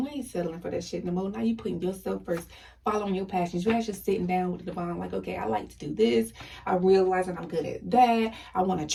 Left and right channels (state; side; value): identical; both; correlation 1.00